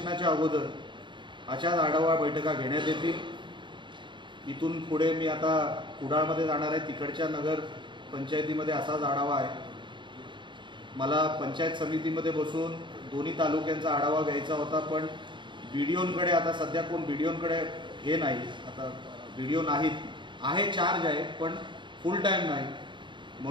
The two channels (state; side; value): late; left; 0.23 ms